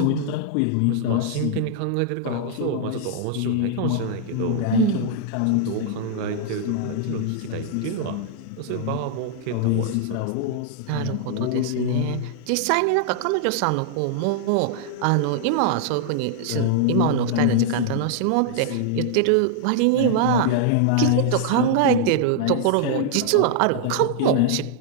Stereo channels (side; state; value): both; different; correlation -0.01